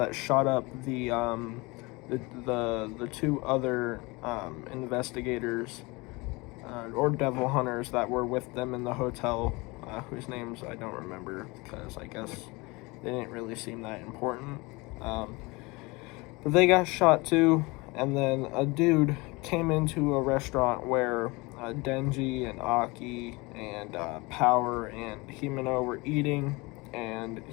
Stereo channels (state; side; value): quieter; right; 24.9 dB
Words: shot up the two other investigators or devil hunters that were with them in the hotel, whose names I don't remember because I guess they didn't really seem that important. But they got shot too, and then a dude came into a restaurant where Denji and Aki and Power and Himeno were eating, and